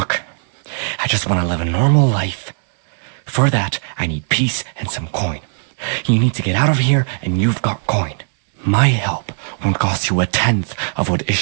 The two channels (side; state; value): left; silent; 67 dB below the other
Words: I just want to live a normal life. For that, I need peace and some coin. You need to get out of here, and you've got coin. My help won't cost you a tenth of what